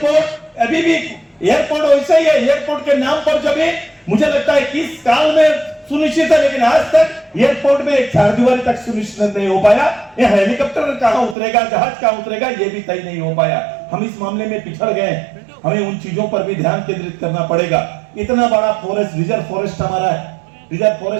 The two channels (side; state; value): left; drops out; at 11.4 s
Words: अभी भी एयरपोर्ट वैसे ही है। एयरपोर्ट के नाम पर जब मुझे लगता है कि इस काल में सुनिश्चित है, लेकिन आज तक एयरपोर्ट में एक चारदीवारी तक सुनिश्चित नहीं हो पाया। ये हेलीकॉप्टर कहां उतरेगा, जहाज कहां उतरेगा, ये भी तय नहीं हो पाया। हम इस मामले में पिछड़ गए। हमें उन चीजों पर भी ध्यान केंद्रित करना पड़ेगा। इतना बड़ा फॉरेस्ट, रिजर्व फॉरेस्ट हमारा है, रिजर्व